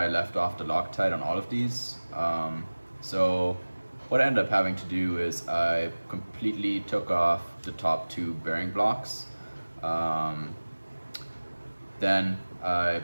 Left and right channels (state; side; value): inverted; both; correlation -1.00